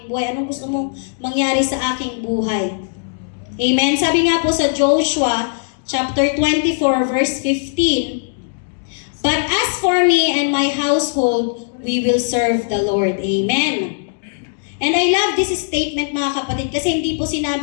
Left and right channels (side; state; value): right; silent; digital silence